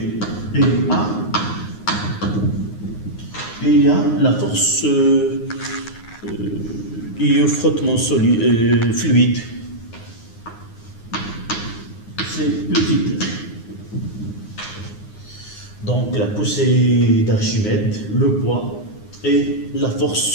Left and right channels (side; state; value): right; late; 9.6 ms